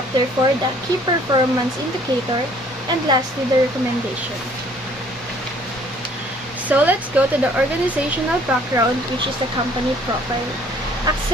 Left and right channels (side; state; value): left; noise; rumble, 26 dB below the sound